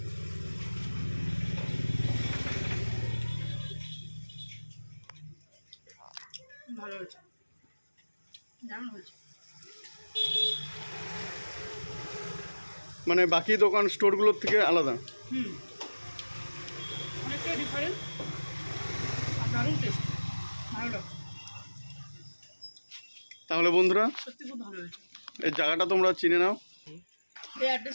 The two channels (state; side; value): inverted; both; correlation -1.00